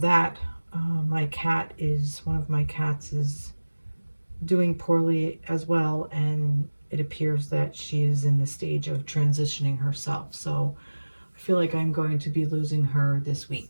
that, one of my cats is doing poorly as well, and it appears that she is in the stage of transitioning herself. So I feel like I'm going to be losing her this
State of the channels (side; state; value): both; inverted; correlation -1.00